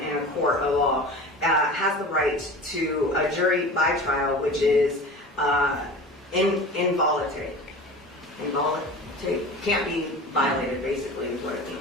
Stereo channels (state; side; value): normal; both; correlation 0.36